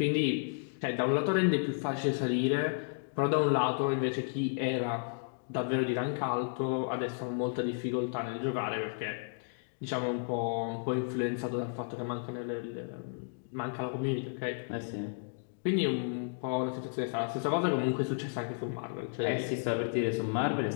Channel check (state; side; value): silent; right; digital silence